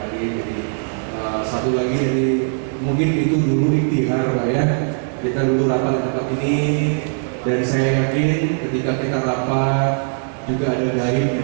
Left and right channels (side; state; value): left; silent; 63 dB below the other